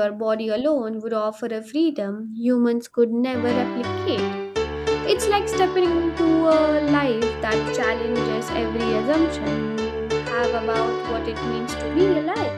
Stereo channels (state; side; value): identical; both; correlation 1.00